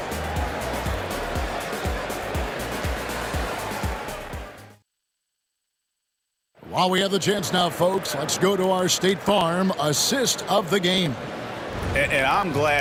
While we have the chance now, folks, let's go to our State Farm assist of the game. And I'm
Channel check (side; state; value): both; identical; correlation 1.00